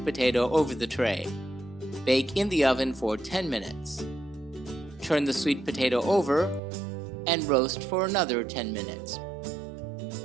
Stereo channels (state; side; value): drops out; left; at 6.6 s